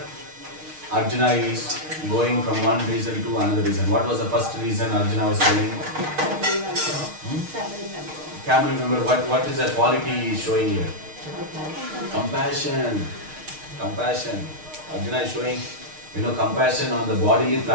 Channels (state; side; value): late; left; 6.5 ms